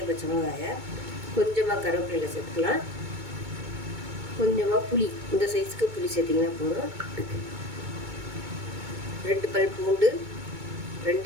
பச்சை மிளகாயை. கொஞ்சமாக கருவேப்பிலை சேர்த்துக்கலாம். கொஞ்சமாக புளி, இந்த சைஸுக்கு புளி சேர்த்திங்கன்னா போதும். 2 பல் பூண்டு,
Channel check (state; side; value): late; left; 2.2 ms